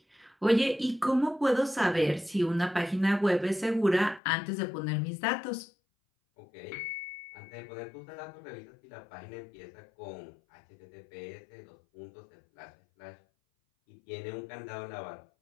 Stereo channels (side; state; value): right; drops out; at 4.2 s